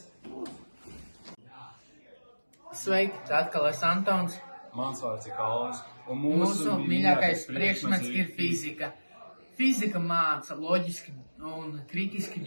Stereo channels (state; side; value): inverted; both; correlation -1.00